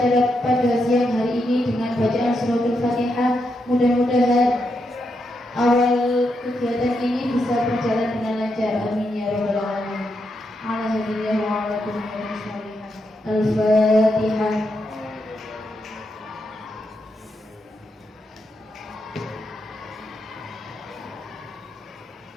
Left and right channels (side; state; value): both; normal; correlation 0.82